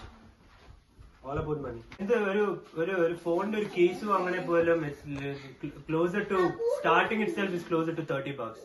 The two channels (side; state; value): both; identical; correlation 1.00